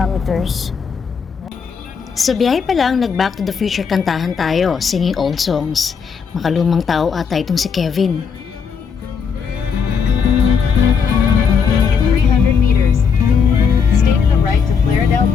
Sa biyahe pa lang, nag-Back to the Future kantahan tayo, singing old songs. Makalumang tao ata itong si Kevin. In 300 meters, stay to the right to Claredale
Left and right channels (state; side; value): quieter; right; 6.2 dB